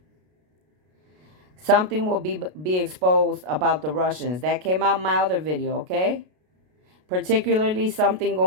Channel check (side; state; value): left; late; 33 ms